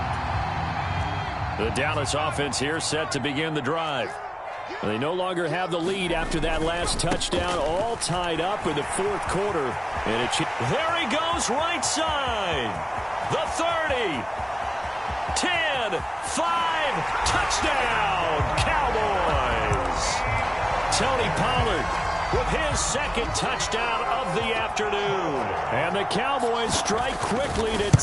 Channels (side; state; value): both; identical; correlation 1.00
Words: The Dallas offense here set to begin the drive. They no longer have the lead after that last touchdown, all tied up in the 4th quarter. And there he goes, right side. The 30, 10, 5, touchdown, Cowboys. Tony Pollard with his second touchdown of the afternoon. And the Cowboys strike quickly to